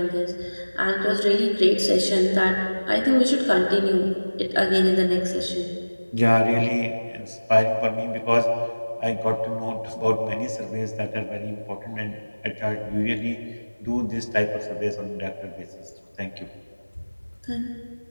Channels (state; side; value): inverted; both; correlation -1.00